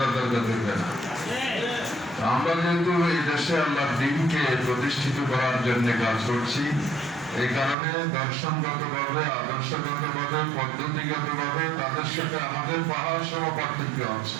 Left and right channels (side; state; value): left; drops out; at 7.8 s